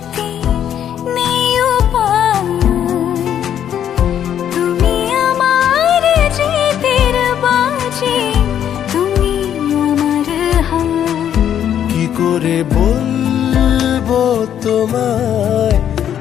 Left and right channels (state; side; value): quieter; right; 9.8 dB